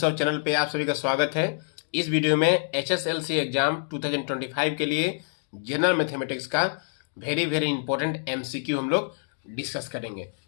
channel पे आप सभी का स्वागत है। इस वीडियो में एचएसएलसी एग्जाम 2025 के लिए जनरल मैथमेटिक्स का वेरी इंपॉर्टेंट एमसीक्यू हम लोग डिस्कस करेंगे।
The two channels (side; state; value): right; silent; digital silence